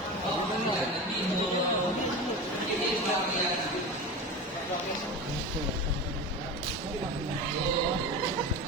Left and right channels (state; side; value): normal; both; correlation 0.28